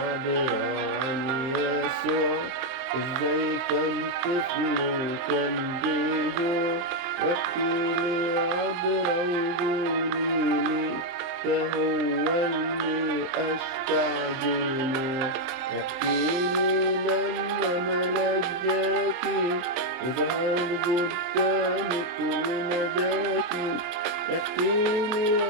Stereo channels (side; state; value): left; late; 23 ms